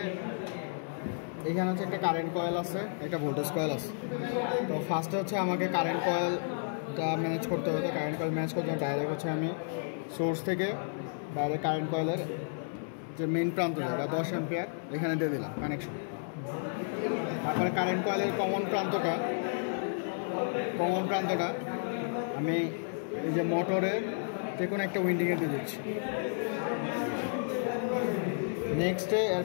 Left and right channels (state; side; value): silent; right; 56 dB below the other